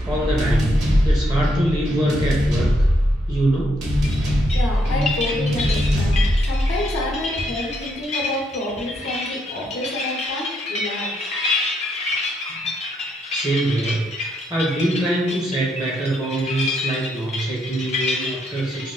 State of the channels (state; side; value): normal; both; correlation 0.76